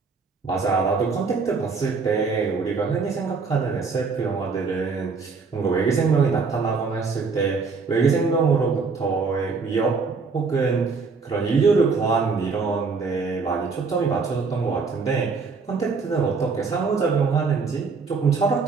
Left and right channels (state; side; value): quieter; left; 4.7 dB